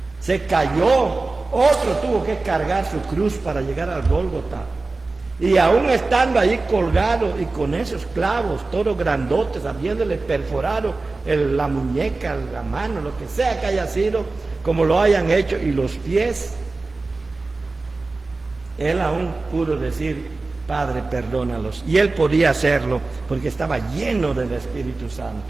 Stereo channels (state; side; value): quieter; left; 3.5 dB